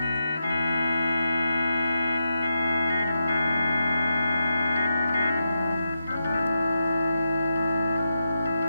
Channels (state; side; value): inverted; both; correlation -0.86